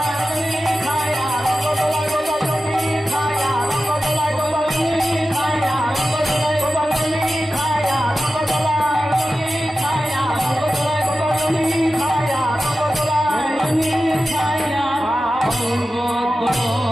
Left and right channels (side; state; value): both; normal; correlation 0.93